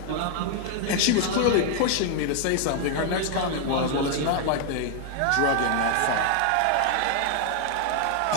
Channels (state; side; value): different; both; correlation 0.00